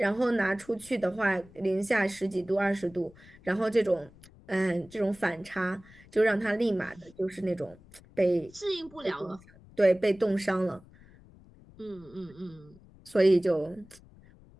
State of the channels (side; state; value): left; noise; rumble, 24 dB below the sound